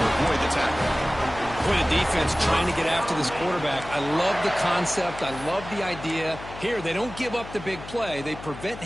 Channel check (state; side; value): noise; left; hum, 13 dB below the sound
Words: avoid the tackle. For the defense trying to get after this quarterback, I love the concept. I love the idea. Here, they don't give up the big play. They prevent